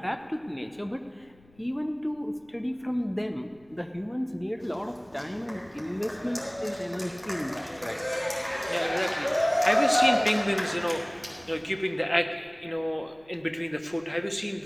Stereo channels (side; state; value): left; noise; rumble, 29 dB below the sound